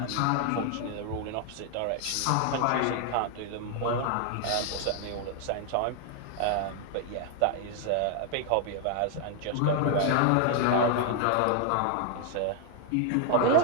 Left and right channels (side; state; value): both; different; correlation 0.00